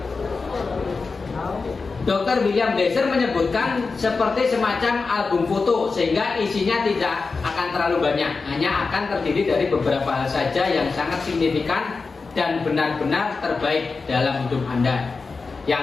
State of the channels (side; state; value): right; quieter; 4.3 dB